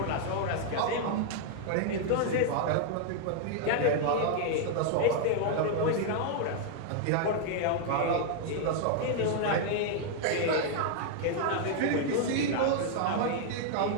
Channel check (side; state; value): both; different; correlation 0.00